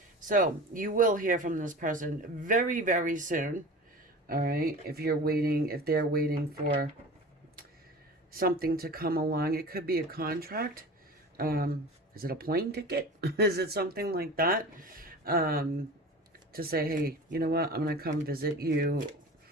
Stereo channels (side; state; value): both; normal; correlation 0.36